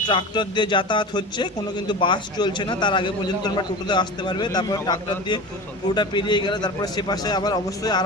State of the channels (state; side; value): normal; both; correlation 0.31